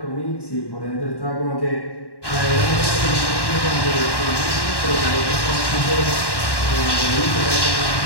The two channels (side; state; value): right; late; 1.1 ms